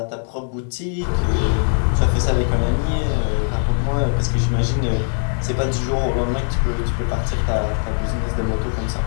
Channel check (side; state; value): right; silent; 63 dB below the other